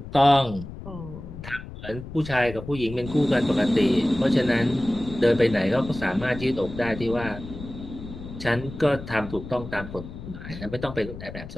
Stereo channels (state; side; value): noise; left; rumble, 12 dB below the sound